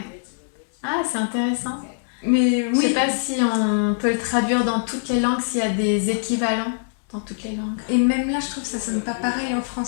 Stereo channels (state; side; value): silent; right; digital silence